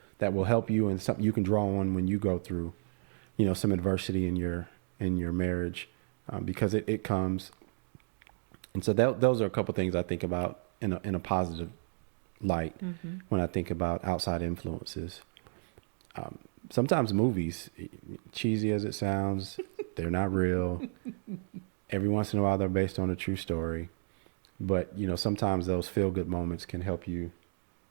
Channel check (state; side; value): silent; left; digital silence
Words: that will help you, and something you can draw on when you go through, some adversity in your marriage, because it comes. And so those are a couple things I think about in a positive light when I think about outside influences. Sometimes movies, cheesy as it sounds, they're not real. Every once in a while, they're based on a true story. But, sometimes those feel-good moments can help you